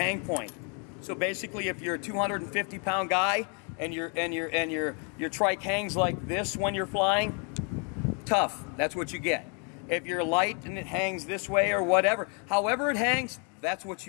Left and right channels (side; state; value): right; quieter; 37.9 dB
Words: point. So basically, if you're a 250-pound guy and your trike hangs like this when you're flying, tough. That's what you get. if you're light and it hangs this way or whatever. However it hangs, that's what